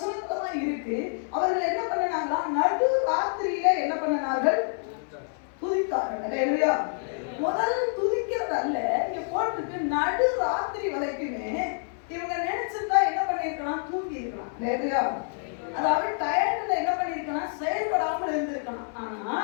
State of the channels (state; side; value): silent; right; 60 dB below the other